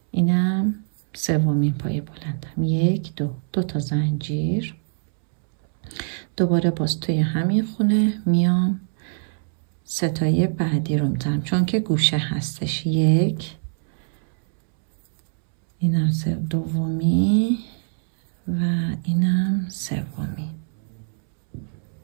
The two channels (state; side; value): silent; left; digital silence